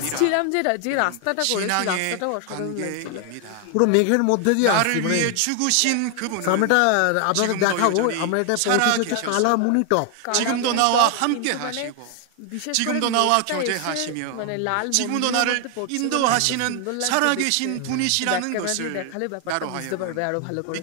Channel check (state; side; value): different; both; correlation 0.00